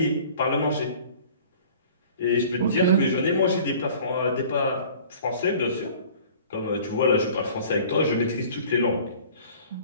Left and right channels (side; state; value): both; inverted; correlation -0.48